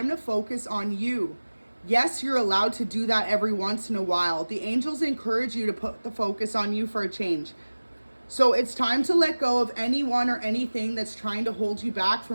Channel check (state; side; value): inverted; both; correlation -1.00